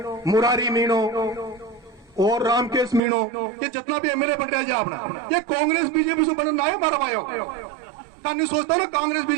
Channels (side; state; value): left; drops out; at 3.0 s